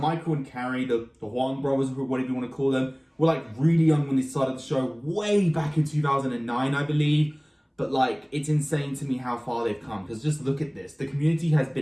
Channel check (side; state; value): both; identical; correlation 1.00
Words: and Carrie, the Huang brothers, or whatever you want to call them, were like really young when they started the show, way back in 2009, I believe. But like, it's insane to me how far they've come, because just look at this. The community has